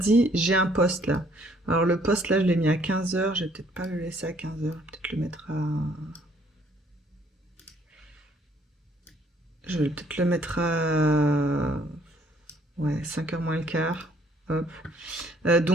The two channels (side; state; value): both; normal; correlation 0.63